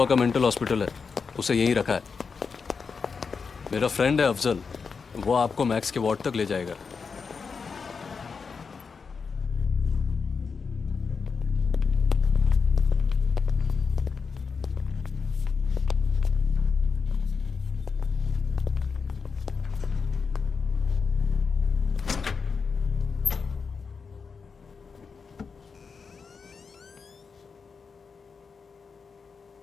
का मेंटल हॉस्पिटल है. उसे यहीं रखा है. मेरा फ्रेंड है अफजल. वो आपको मैक्स के वार्ड तक ले जाएगा.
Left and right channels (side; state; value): right; quieter; 5.3 dB